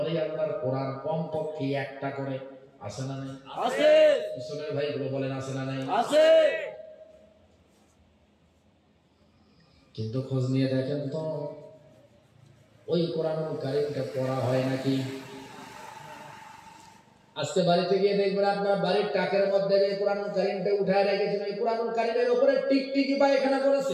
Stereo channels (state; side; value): identical; both; correlation 1.00